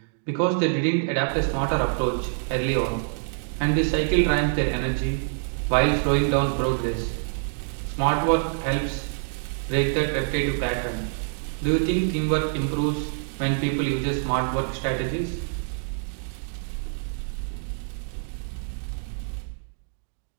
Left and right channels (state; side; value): silent; left; digital silence